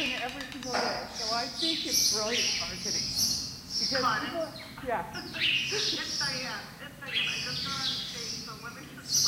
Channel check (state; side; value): identical; both; correlation 1.00